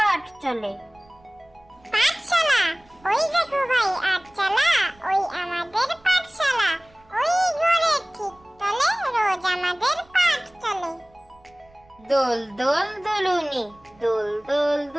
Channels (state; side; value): noise; right; rumble, 30 dB below the sound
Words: চলে। পাঠশালা, ওই দেখো ভাই আটচালা, ওই আমাদের পাঠশালা। ওই ঘরের ঠিক তলে রোজ আমাদের পাঠ চলে। দোল দোল দুলুনি, দোল দোল